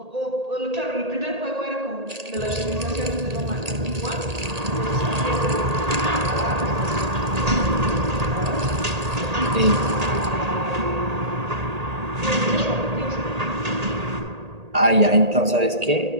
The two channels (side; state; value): left; late; 1.8 ms